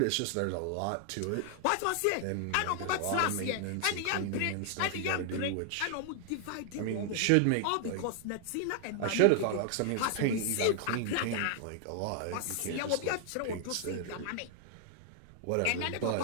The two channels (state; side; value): different; both; correlation 0.00